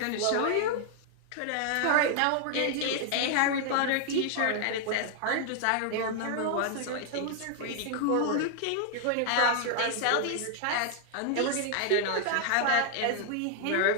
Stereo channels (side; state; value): both; different; correlation 0.00